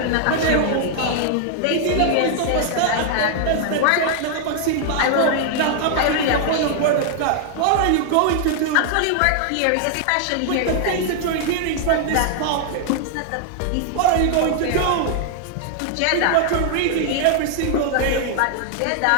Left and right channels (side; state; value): both; different; correlation 0.00